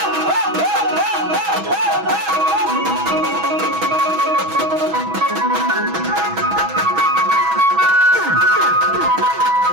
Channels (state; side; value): late; left; 6.2 ms